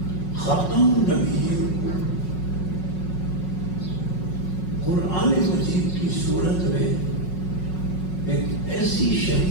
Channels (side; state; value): right; late; 5.5 ms